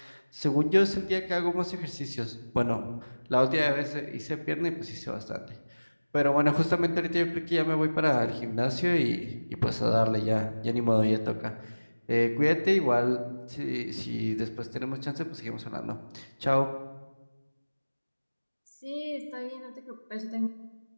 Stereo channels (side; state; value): both; inverted; correlation -1.00